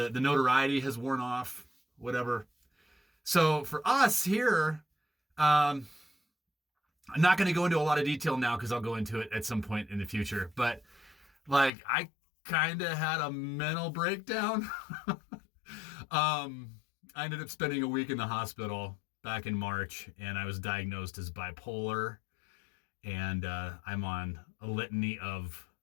notoriety has worn off, whatever. So for us here, I'm not going to go into a lot of detail now because I'll go into it at some point in the future. But like, I kind of had a mental breakdown. I ended up spending a week in the hospital back in March, and I was diagnosed as bipolar, and I'm on a litany of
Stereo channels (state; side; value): drops out; right; at 11.7 s